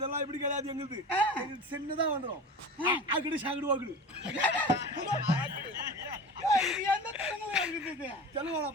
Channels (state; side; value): normal; both; correlation 0.33